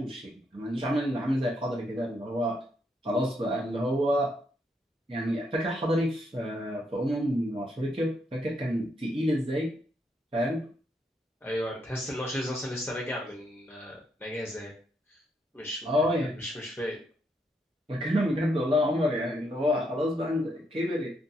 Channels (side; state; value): both; normal; correlation 0.77